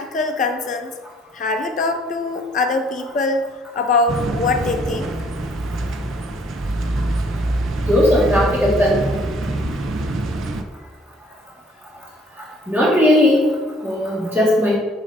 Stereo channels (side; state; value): both; normal; correlation 0.60